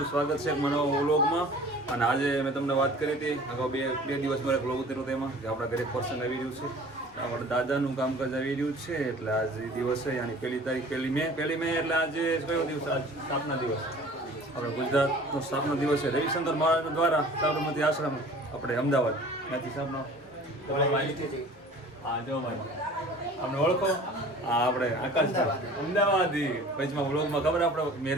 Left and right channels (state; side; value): normal; both; correlation 0.46